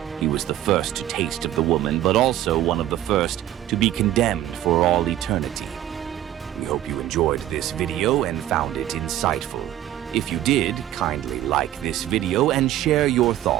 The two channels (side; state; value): left; quieter; 13.0 dB